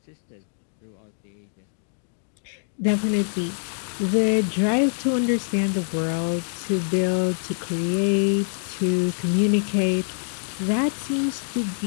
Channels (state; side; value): silent; right; digital silence